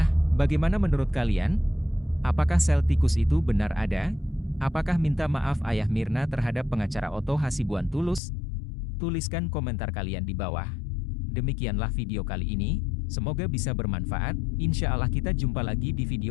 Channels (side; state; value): right; drops out; at 8.2 s